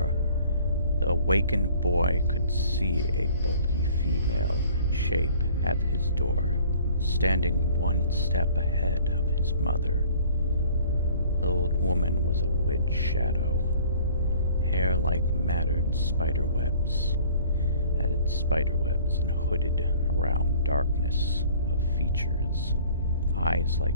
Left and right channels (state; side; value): inverted; both; correlation -0.51